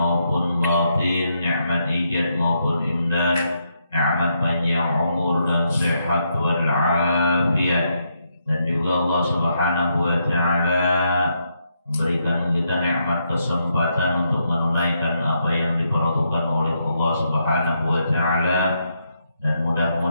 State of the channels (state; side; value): inverted; both; correlation -0.79